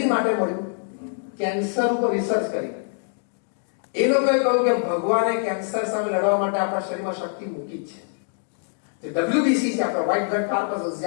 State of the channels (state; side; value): silent; right; digital silence